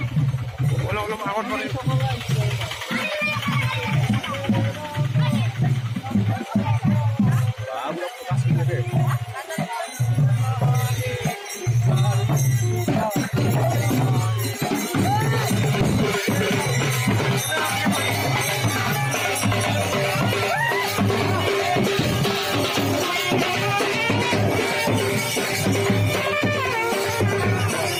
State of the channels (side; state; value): both; identical; correlation 1.00